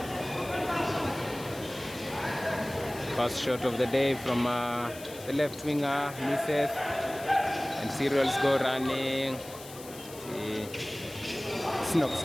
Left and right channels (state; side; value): noise; left; hiss, 16 dB below the sound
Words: First shot of the day from the left winger, misses, and Cereals go running. Snox